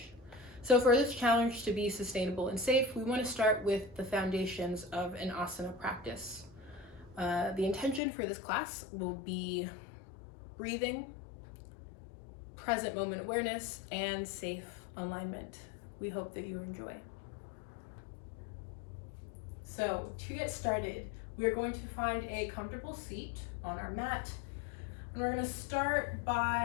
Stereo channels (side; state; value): right; drops out; at 8.0 s